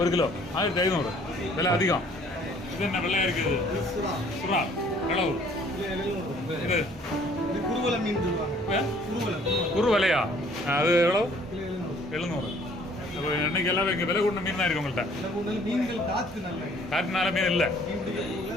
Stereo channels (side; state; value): both; normal; correlation 0.57